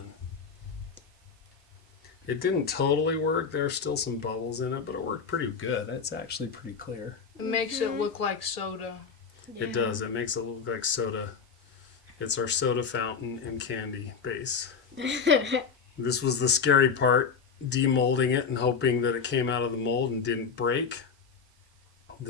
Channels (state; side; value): quieter; right; 5.9 dB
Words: It didn't totally work. There's still some bubbles in it, but it worked pretty good. It's actually pretty clear. It makes it look like soda. It does. It makes it look like soda. It's our soda fountain and candy base. This was the scary part, demolding it and hoping that it came out of the mold and didn't break.